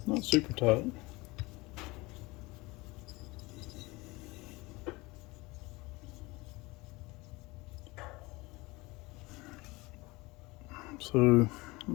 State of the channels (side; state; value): right; quieter; 22.8 dB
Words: Not super tight. So